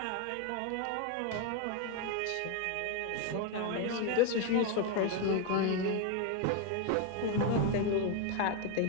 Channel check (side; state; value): both; different; correlation 0.01